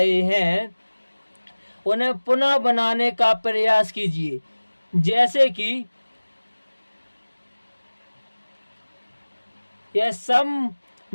हैं उन्हें पुनः बनाने का प्रयास कीजिए। जैसे कि यह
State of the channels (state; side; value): inverted; both; correlation -1.00